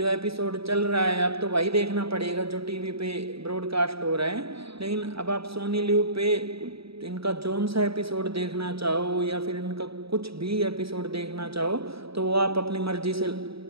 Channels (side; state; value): left; late; 0.77 ms